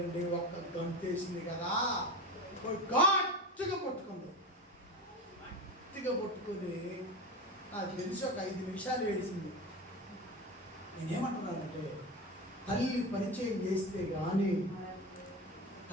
ఒక్క గంటేసింది కదా, గట్టిగా పట్టుకుంది. గట్టిగా పట్టుకొని నాకు తెలిసి ఒక 5 నిమిషాలు ఏడిసింది. నేనేమంటున్నానంటే, తల్లి పరిచయం చేస్తే కానీ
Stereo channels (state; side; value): normal; both; correlation 0.24